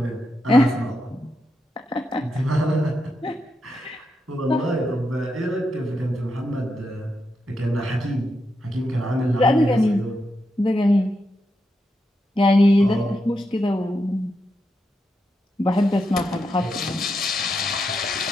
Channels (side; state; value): both; normal; correlation 0.85